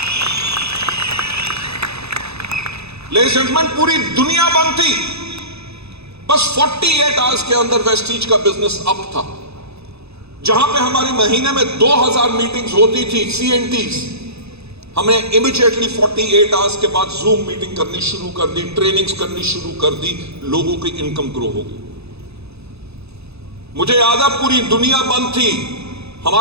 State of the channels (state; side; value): late; left; 0.79 ms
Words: लेडीज एंड जेंटलमैन, पूरी दुनिया बंद थी। बस 48 आवर्स के अंदर वेस्टीज का बिजनेस अप था। जहां पे हमारी महीने में 2000 मीटिंग्स होती थी, CNTs, हमने इमीडिएटली 48 आवर्स के बाद जूम मीटिंग करनी शुरू कर दी, ट्रेनिंग्स करनी शुरू कर दी, लोगों की इनकम ग्रो हो गई। मुझे याद है पूरी दुनिया बंद थी।